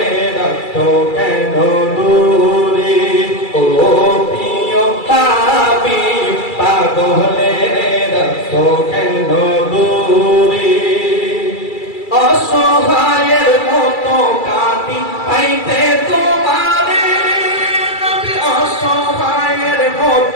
রাখো কেন দূরে ও প্রিয় হাবিব পাগলের রাখো কেন দূরে অসহায়ের মতো কাঁদি পাইতে তোমারে নবী অসহায়ের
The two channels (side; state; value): right; late; 2.3 ms